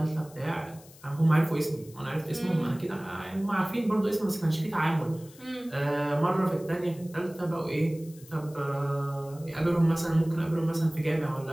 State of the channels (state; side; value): noise; left; hiss, 23 dB below the sound